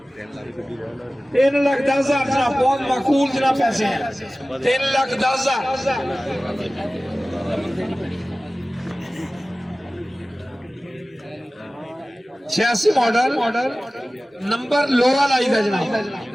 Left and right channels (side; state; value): both; normal; correlation 0.97